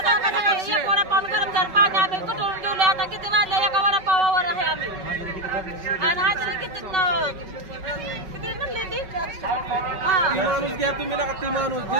वडापाव गरम झालं, पाणी आम्ही कुठून ठेवले. आता किती वाजले, एका वडापावावर आहे आम्ही. आणि हाजरी किती म्हणली ती माणूस घ्या तुम्ही नका, ती माणूस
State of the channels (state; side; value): late; left; 5.3 ms